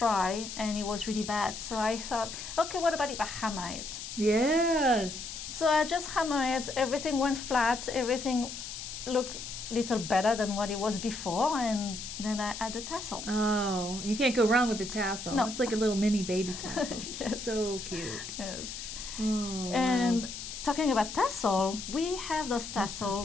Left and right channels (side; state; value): left; noise; hiss, 9 dB below the sound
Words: and it was really bad. So I thought, okay, what about if I hammer it? Yes. So I just hammered it, everything went flat, everything looked a little better than what it was before, and then I add the tassel. Oh, you can't go wrong with the tassel. No. It's like a little mini baby tassel. Yes. So cute. Yes. Oh, And wow. talking about tassel, we have those tassel